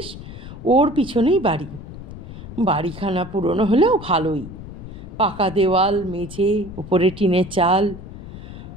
ওর পিছনেই বাড়ি। বাড়িখানা পুরনো হলেও ভালোই, পাকা দেওয়াল, মেঝে, উপরে টিনের চাল,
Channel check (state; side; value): noise; left; rumble, 13 dB below the sound